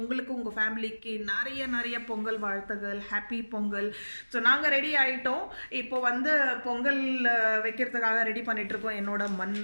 உங்கள் ஃபேமிலிக்கு நிறைய பொங்கல் வாழ்த்துகள். ஹாப்பி பொங்கல். ஸோ நாங்கள் ரெடி ஆகிட்டோம். இப்போ வந்து பொங்கல் வைக்கிறதுக்காக ரெடி பண்ணிகிட்ருக்கோம் என்னோட மண்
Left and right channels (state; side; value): inverted; both; correlation -1.00